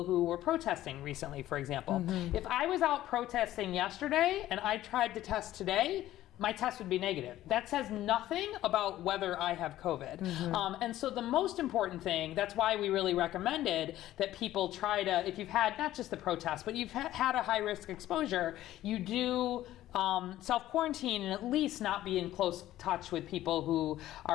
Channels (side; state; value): right; quieter; 14.1 dB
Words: who were protesting recently, for example. If I was out protesting yesterday and I tried to test today, my test would be negative. That says nothing about whether I have COVID. And so the most important thing, that's why we really recommended that people try to, if you've had not just the protest, but you've had a high risk exposure, you do self-quarantine and at least not be in close touch with people who